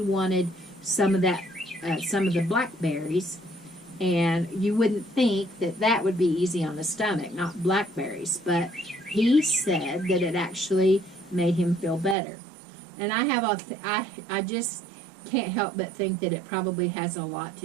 wanted some of that, some of the blackberries. And you wouldn't think that that would be easy on the stomach, not blackberries, but he said that it actually made him feel better. And I just can't help but think that it probably has a lot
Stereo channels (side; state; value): left; drops out; at 12.2 s